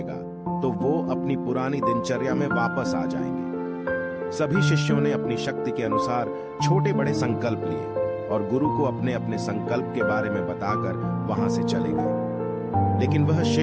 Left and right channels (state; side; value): identical; both; correlation 1.00